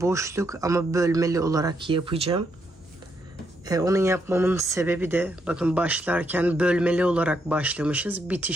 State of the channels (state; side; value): normal; both; correlation 0.77